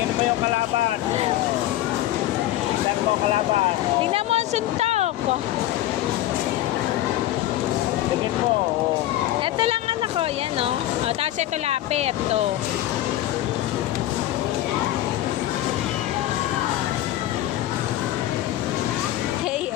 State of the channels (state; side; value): quieter; right; 14.1 dB